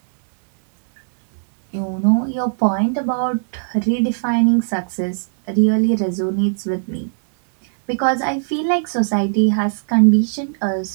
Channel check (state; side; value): silent; left; digital silence